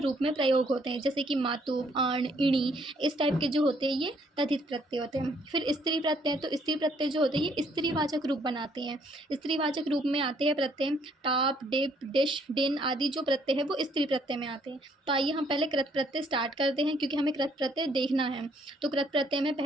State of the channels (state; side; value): normal; both; correlation 0.66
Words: रूप में प्रयोग होते हैं जैसे कि मातु, आण, इणी, इस टाइप के जो होते हैं ये तद्धित प्रत्यय होते हैं। फिर स्त्री प्रत्यय। तो स्त्री प्रत्यय जो होते हैं ये स्त्रीवाचक रूप बनाते हैं। स्त्रीवाचक रूप में आते हैं प्रत्यय टाप, डिप, डिश, डिन आदि जो प्रत्यय है वो स्त्री प्रत्यय में आते हैं। तो आइए हम पहले कृत प्रत्यय स्टार्ट करते हैं क्योंकि हमें कृत प्रत्यय देखना है। तो कृत प्रत्यय में